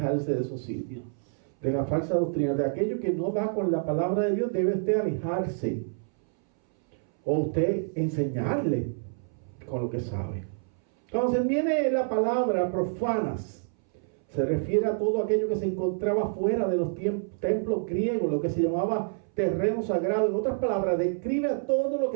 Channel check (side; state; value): left; silent; 60 dB below the other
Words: de esos sitios, de la falsa doctrina, de aquello que no va con la palabra de Dios. Debe usted alejarse, o usted enseñarle con lo que sabe. Cuando se viene la palabra profanas, se refiere a todo aquello que se encontraba fuera de los templos griegos, lo que se llamaba terreno sagrado. En otras palabras, describe a todo lo